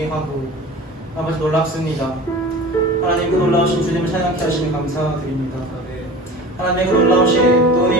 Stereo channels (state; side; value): normal; both; correlation 0.38